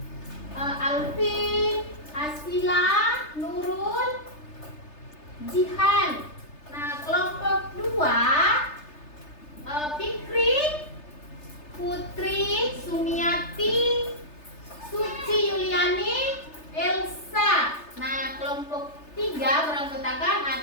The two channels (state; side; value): late; right; 3.3 ms